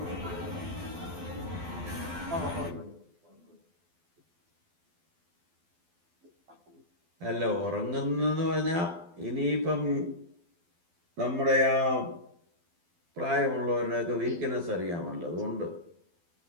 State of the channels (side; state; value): left; late; 12 ms